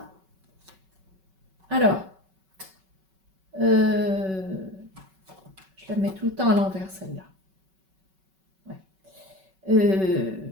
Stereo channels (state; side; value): late; left; 5.3 ms